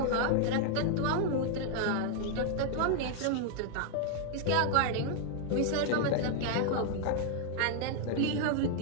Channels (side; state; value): both; different; correlation 0.00